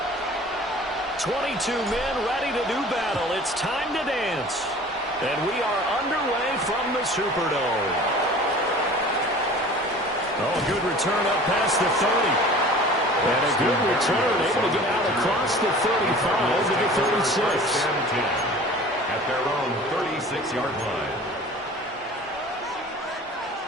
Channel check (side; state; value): both; normal; correlation 0.44